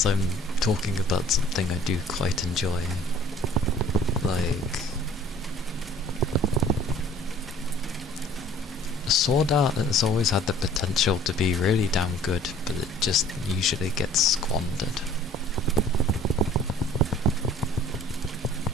I'm talking about something I do quite enjoy. Like, Sword Art has always had the potential to be really damn good, but it just usually gets squandered.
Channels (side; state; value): both; normal; correlation 0.52